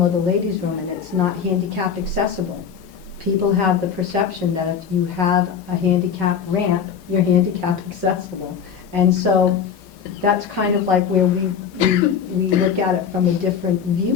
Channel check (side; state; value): right; quieter; 7.2 dB